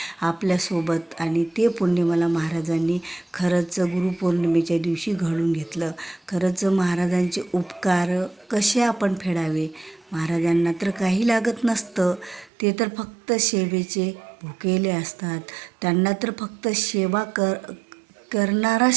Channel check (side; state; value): left; drops out; at 12.5 s